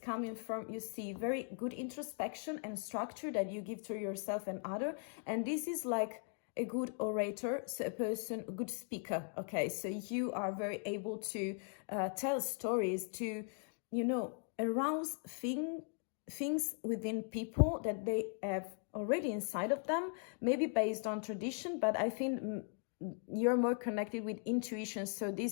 coming from, you see, very good introspection and structure that you give to yourself and other. And this is like a good orator, so a good speaker. Okay, so you are very able to tell stories, to, arouse things within people that they have already inside of them, maybe based on tradition, but I think you're more connected with intuition. So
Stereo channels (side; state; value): right; silent; 52 dB below the other